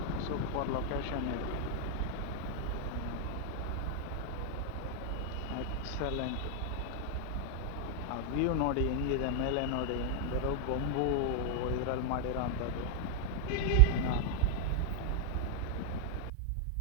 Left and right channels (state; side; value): different; both; correlation 0.00